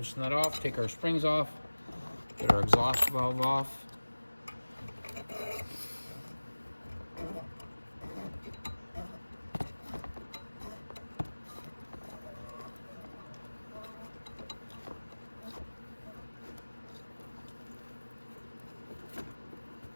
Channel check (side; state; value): both; inverted; correlation -1.00